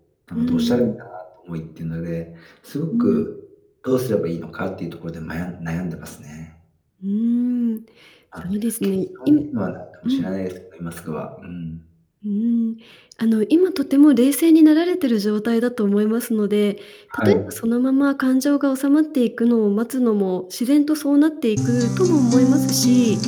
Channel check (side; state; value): both; identical; correlation 1.00